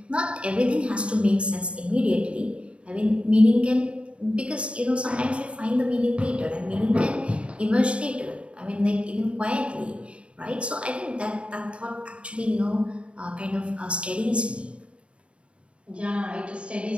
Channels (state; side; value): late; left; 0.059 ms